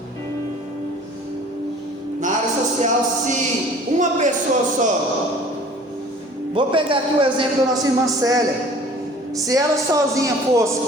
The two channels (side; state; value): both; normal; correlation 0.49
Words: Na área social, se uma pessoa só, vou pegar aqui o exemplo da nossa irmã Célia, se ela sozinha fosse